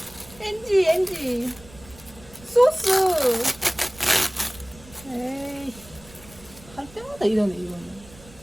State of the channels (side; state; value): right; noise; rumble, 22 dB below the sound